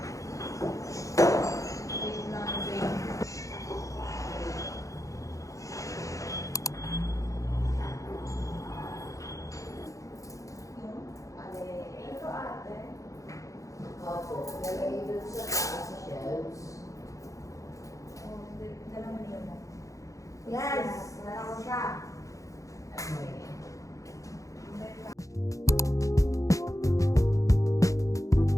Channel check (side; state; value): right; late; 0.16 ms